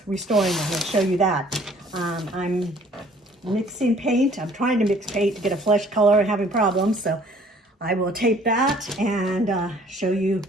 restoring them. I'll show you that. I'm mixing paint. I'm trying to mix paint to get a flesh color and having problems. So I will tape that and show you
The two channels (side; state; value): both; normal; correlation 0.56